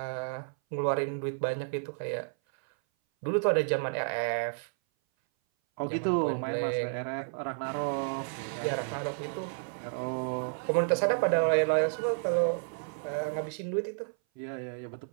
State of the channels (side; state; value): left; silent; 57 dB below the other